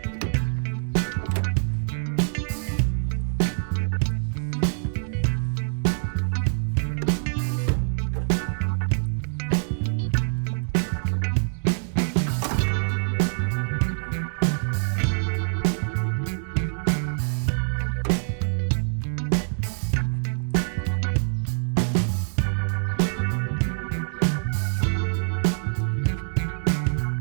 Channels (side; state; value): left; silent; digital silence